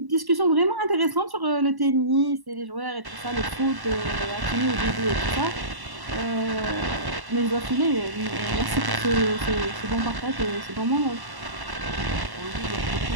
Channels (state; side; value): late; left; 1.1 ms